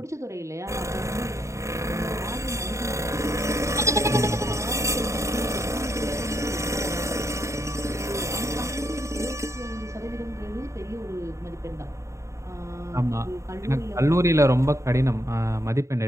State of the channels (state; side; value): late; left; 0.14 ms